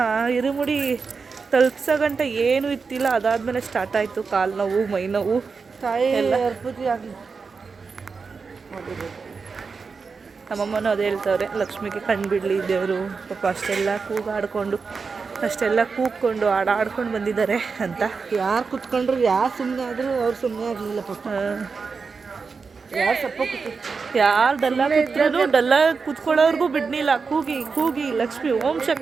ಇರುಮುಡಿ ತಲುಪ್ಸೋ ಗಂಟೆ ಏನೂ ಇತ್ತಿಲ್ಲ. ಅದಾದಮೇಲೆ ಸ್ಟಾರ್ಟ್ ಆಯಿತು ಕಾಲು ನೋವು, ಮೈ ನೋವು ಎಲ್ಲ. ನಮ್ಮಮ್ಮನೂ ಅದೇ ಹೇಳ್ತವ್ರೆ, ಲಕ್ಷ್ಮಿಗೆ ಕಣ್ಣು ಬಿಡಲಿ ದೇವರು, ಪಾಪ ಅಷ್ಟೆಲ್ಲ ಕೂಗ್ಕೊಂಡು ಆಡ್ಕೊಂಡು ಬಂದಿದ್ದಾರೆ ಅಂತ. ಯಾರು ಕುತ್ಕೊಂಡ್ರು, ಯಾರು ಸುಮ್ಮನೆ ಆದರೂ ಅವ್ರು ಸುಮ್ಮನೆ ಆಗಲಿಲ್ಲ ಪಾಪ. ಯಾರು ಸಪ್ಪ ಯಾರು ಡಲ್ಲ ಕೂತ್ಕೊಳ್ಳೋರ್ಗೂ ಬಿಡ್ನಿಲ್ಲ. ಕೂಗಿ ಲಕ್ಷ್ಮಿ ಓಂ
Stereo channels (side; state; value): left; quieter; 5.0 dB